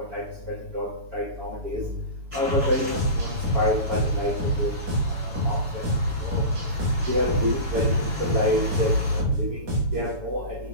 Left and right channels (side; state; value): left; late; 7.1 ms